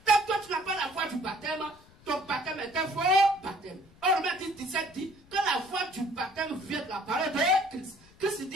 Tant que tu n'as pas la foi du baptême, ton baptême est un faux baptême. Or, Romains 10, 17 dit que la foi du baptême vient de la parole de Christ. Christ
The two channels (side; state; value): left; noise; rumble, 26 dB below the sound